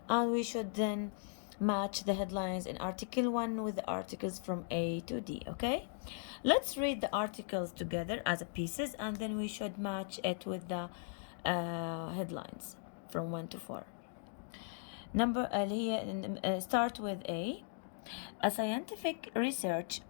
and we should then match the headlines in article 1 with the articles from A to D. Okay, let's read the articles together as a pieces, and then we should match it with the headlines from 1 to 4. Start with A. A scientific research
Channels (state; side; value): silent; right; digital silence